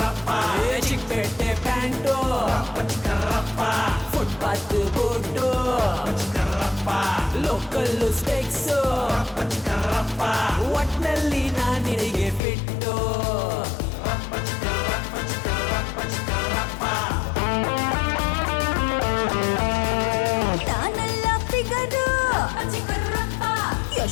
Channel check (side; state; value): right; drops out; at 12.4 s